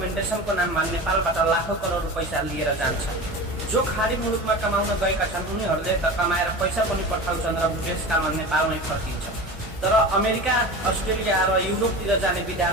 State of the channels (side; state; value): both; normal; correlation 0.31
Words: नाममा नेपालबाट लाखौं करोड पैसा लिएर जान्छन्। जो खाडी मुलुकमा कमाउन गएका छन् उनीहरूले त कमाएर पैसा पनि पठाउँछन् र देशकालमा नेपालमै फर्किन्छन्, तर अमेरिका, अस्ट्रेलिया र युरोपतिर जाने